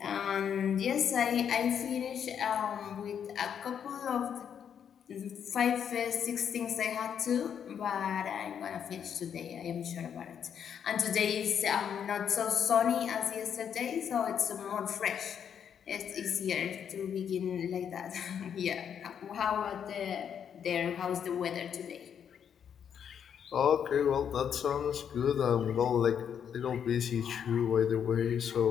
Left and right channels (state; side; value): quieter; right; 8.2 dB